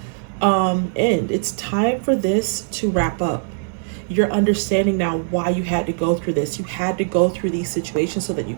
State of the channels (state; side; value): silent; left; 65 dB below the other